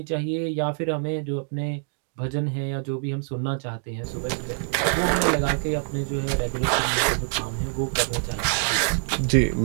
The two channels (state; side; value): silent; left; digital silence